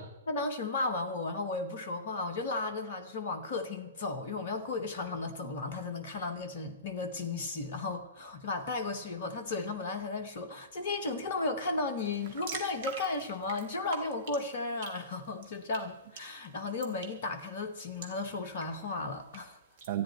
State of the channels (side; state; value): both; inverted; correlation -0.33